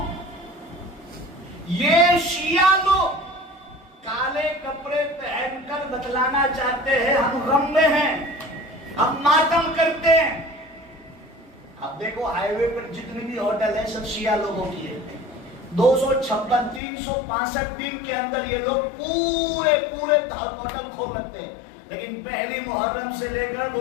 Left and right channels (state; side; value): drops out; right; at 16.8 s